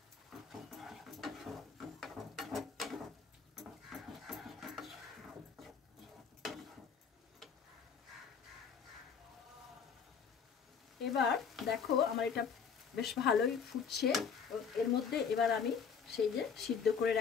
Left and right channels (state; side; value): quieter; right; 6.4 dB